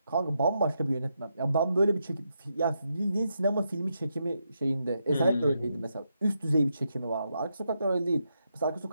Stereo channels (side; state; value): both; inverted; correlation -0.82